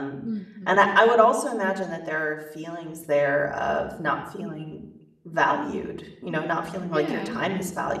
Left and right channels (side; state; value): both; identical; correlation 1.00